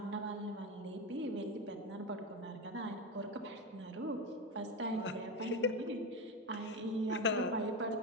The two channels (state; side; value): normal; both; correlation 0.17